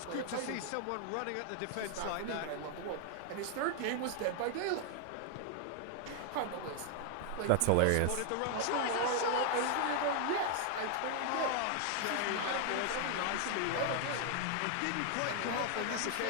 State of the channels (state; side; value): different; both; correlation 0.00